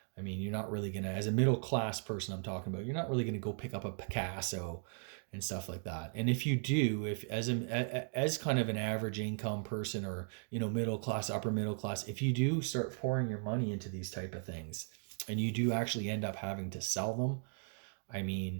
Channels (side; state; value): left; silent; 53 dB below the other